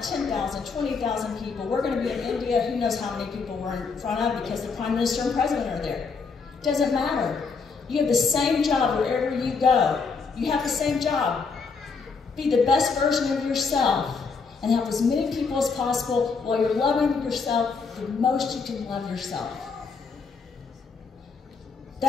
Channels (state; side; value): quieter; right; 5.0 dB